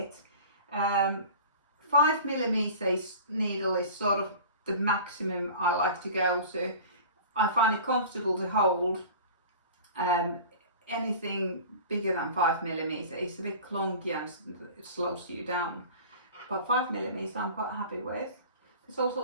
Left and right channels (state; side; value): inverted; both; correlation -0.39